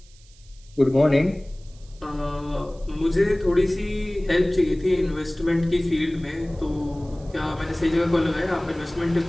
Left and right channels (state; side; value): noise; right; hiss, 27 dB below the sound